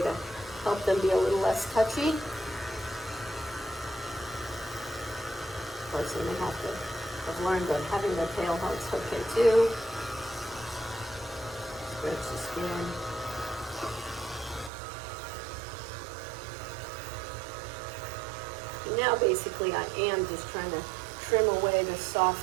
to help them be a little less touchy. Of course, then they have to I've learned that having the tail helps okay too. Stretch the skin. And now basically I am just trying to trim away the soft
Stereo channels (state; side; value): drops out; left; at 14.7 s